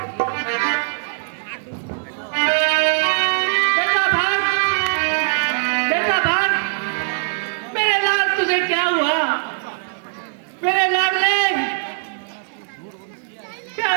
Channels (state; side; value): silent; left; digital silence